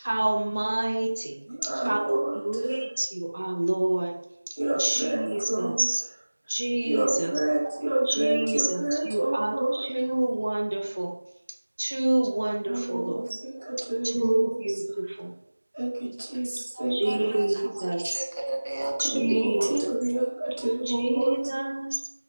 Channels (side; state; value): both; inverted; correlation -1.00